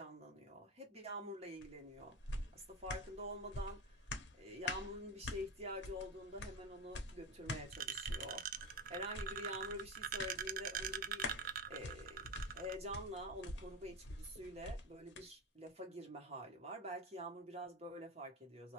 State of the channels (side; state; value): both; normal; correlation 0.21